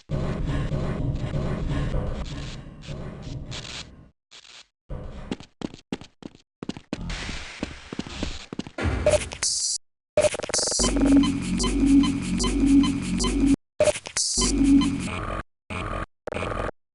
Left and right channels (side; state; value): both; identical; correlation 1.00